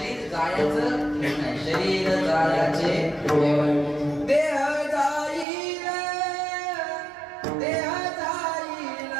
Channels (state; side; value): drops out; left; at 5.5 s